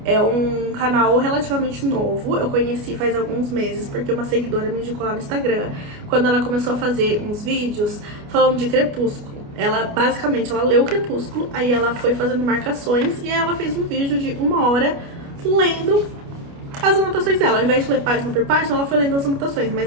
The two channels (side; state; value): left; late; 29 ms